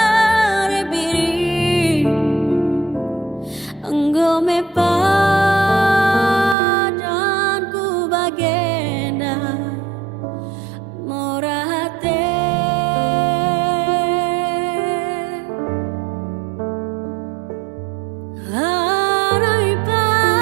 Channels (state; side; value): drops out; left; at 6.6 s